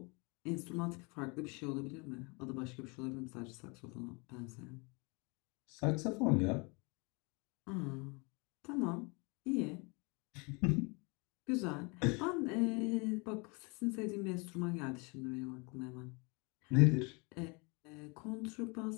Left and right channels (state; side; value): quieter; right; 30.2 dB